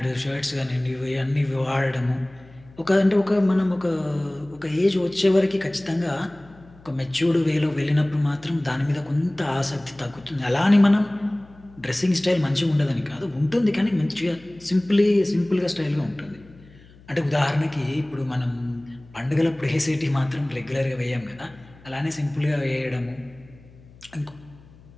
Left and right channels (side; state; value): left; noise; hum, 24 dB below the sound